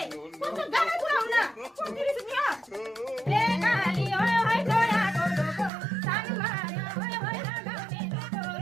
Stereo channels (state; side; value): drops out; left; at 5.7 s